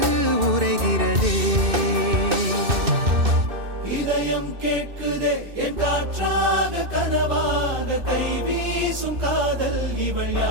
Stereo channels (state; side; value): late; left; 2.6 ms